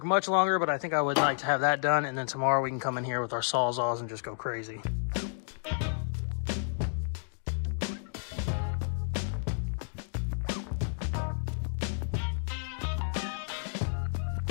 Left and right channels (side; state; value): right; silent; digital silence